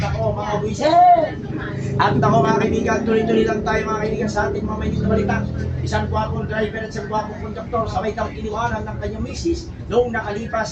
ko mga buwisit. At ako mga kaibigan, tuloy-tuloy lang tayo mga kaibigan sa ating mga mainit na balita. Isang gwapong driver at isang gwapong konduktor sabay daw iniwanan ng kanyang misis noong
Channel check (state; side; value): identical; both; correlation 1.00